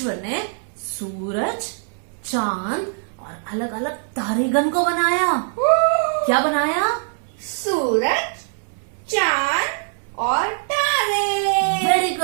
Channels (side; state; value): left; silent; 64 dB below the other